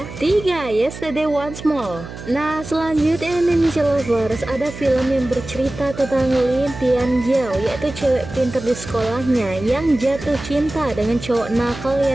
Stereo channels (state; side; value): noise; right; hum, 12 dB below the sound